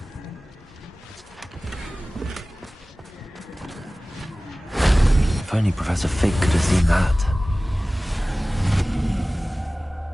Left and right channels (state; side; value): normal; both; correlation 0.98